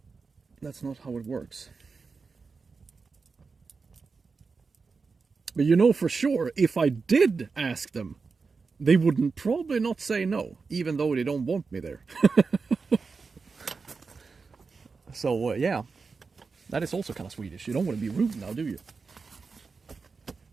That's not how it works. But you know for sure, if I did ask them, they wouldn't probably not say no, even though they don't want me there. So yeah, that is also kind of Swedish. You don't want to be rude now, do you?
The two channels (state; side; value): quieter; left; 4.7 dB